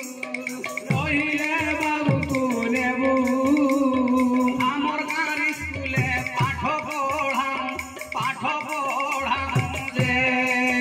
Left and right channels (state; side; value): identical; both; correlation 1.00